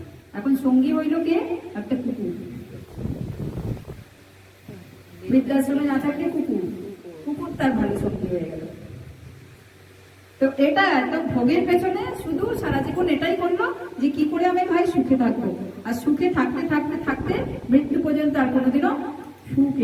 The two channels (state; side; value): identical; both; correlation 1.00